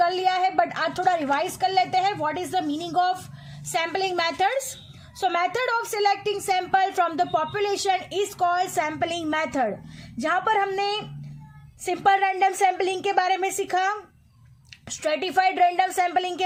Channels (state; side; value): identical; both; correlation 1.00